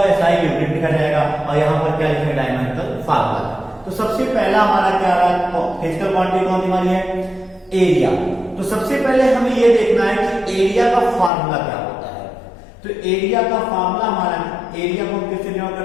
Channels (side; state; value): right; drops out; at 11.3 s